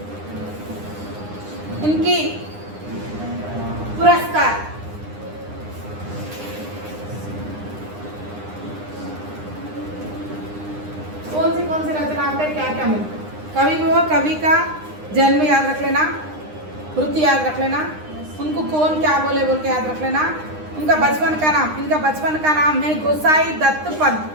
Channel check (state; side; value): late; left; 9.8 ms